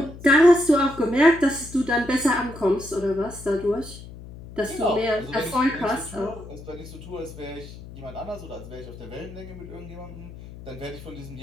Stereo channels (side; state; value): left; noise; hum, 15 dB below the sound